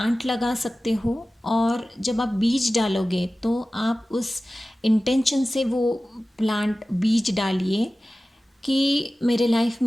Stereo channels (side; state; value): both; normal; correlation 0.96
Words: लगा सकते हो, और जब आप बीज डालोगे तो आप उस इंटेंशन से वो प्लांट बीज डालिए कि मेरे लाइफ